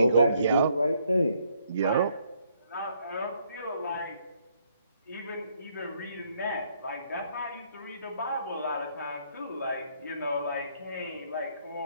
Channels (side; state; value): both; inverted; correlation -0.70